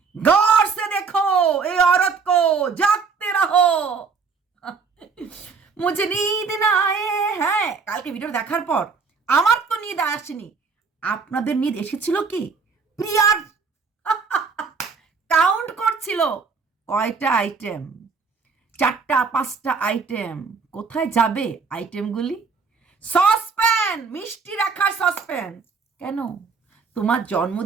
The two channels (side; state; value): left; quieter; 5.1 dB